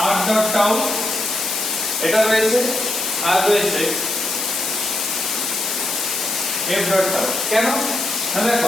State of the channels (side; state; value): left; noise; hiss, 2 dB below the sound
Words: r.τ এটা রয়েছে, আর রয়েছে f.τ। কেন না,